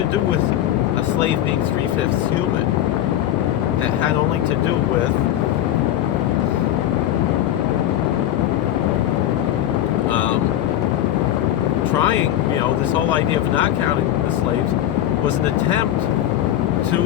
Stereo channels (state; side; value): quieter; right; 12.2 dB